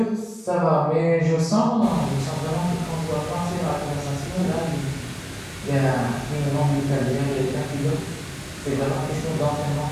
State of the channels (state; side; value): identical; both; correlation 1.00